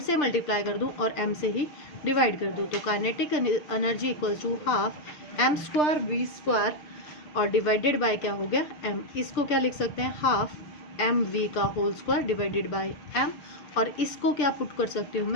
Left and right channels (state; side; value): late; right; 6.8 ms